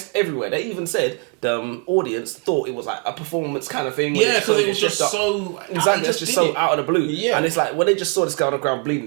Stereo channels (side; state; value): left; quieter; 36.0 dB